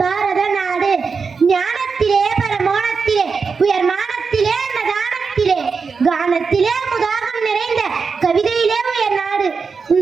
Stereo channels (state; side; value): quieter; left; 5.2 dB